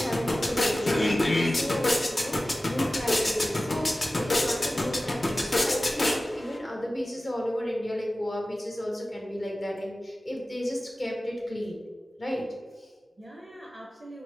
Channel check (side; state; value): both; normal; correlation 0.96